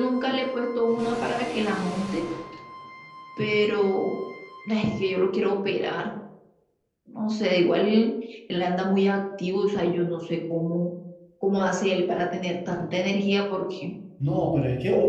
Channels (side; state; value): both; identical; correlation 1.00